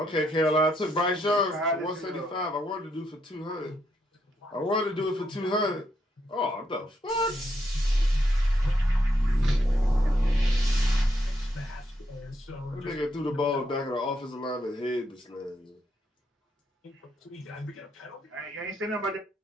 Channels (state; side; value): normal; both; correlation 0.77